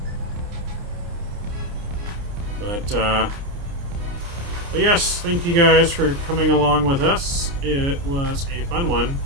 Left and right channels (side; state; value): left; late; 29 ms